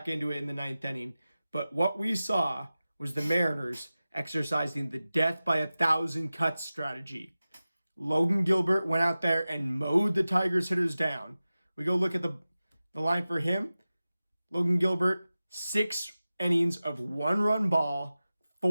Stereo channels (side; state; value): both; inverted; correlation -0.96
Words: into it in the ninth inning, but what we saw was the Mariners exercising the death by 1,000 cuts strategy. Logan Gilbert went out there and mowed the Tigers hitters down. We go look at the line for him. Logan Gilbert, 6 innings of 1-run ball,